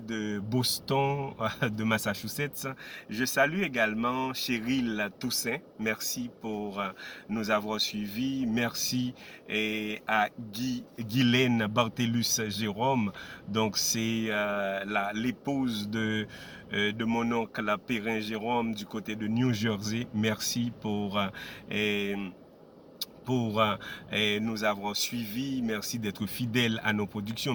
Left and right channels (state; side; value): identical; both; correlation 1.00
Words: de Boston, de Massachusetts. Je salue également Cheryl Toussaint. Merci pour nous avoir suivis. Merci à Guylaine Bartellus Jérôme. Donc c'est l'épouse de mon oncle Perrin Jérôme du côté de New Jersey. Merci pour nous avoir suivis. Merci d'être fidèles à nos productions.